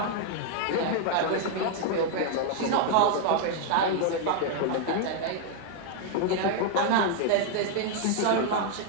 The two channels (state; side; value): different; both; correlation 0.00